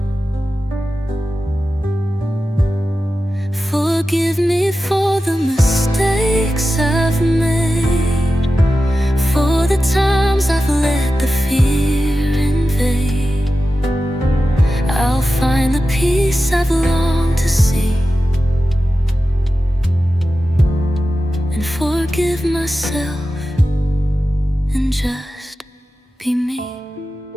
Forgive me for the mistakes I've made, for the times I've let the fear invade. I'll find the peace I've longed to see, and forgive myself and just be me.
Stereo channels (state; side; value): normal; both; correlation 0.93